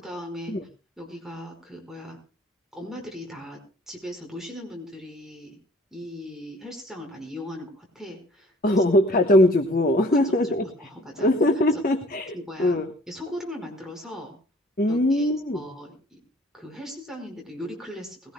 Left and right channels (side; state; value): both; normal; correlation 0.53